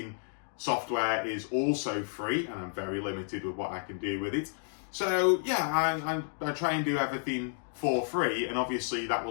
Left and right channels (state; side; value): silent; right; 57 dB below the other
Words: software is also free, and I'm very limited with what I can do with it. So yeah, I try and do everything for free, and obviously that